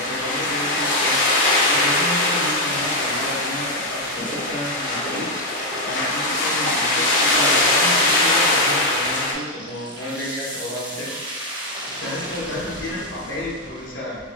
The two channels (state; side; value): normal; both; correlation 0.02